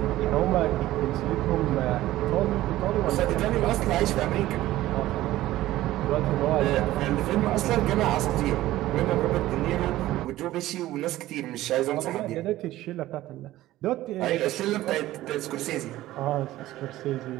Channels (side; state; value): left; quieter; 15.6 dB